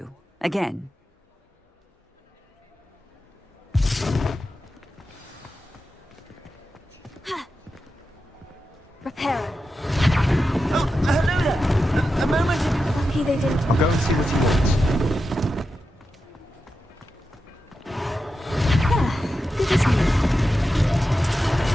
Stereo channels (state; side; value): normal; both; correlation 0.90